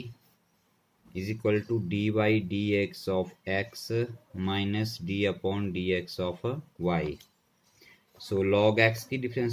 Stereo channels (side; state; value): both; identical; correlation 1.00